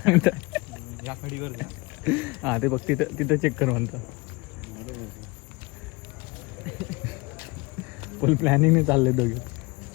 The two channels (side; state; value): right; quieter; 25.2 dB